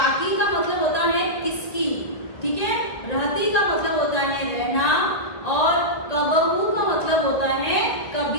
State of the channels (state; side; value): late; right; 1.5 ms